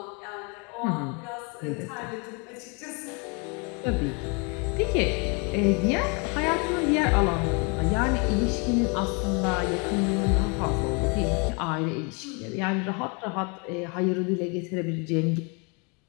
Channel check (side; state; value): right; quieter; 33.1 dB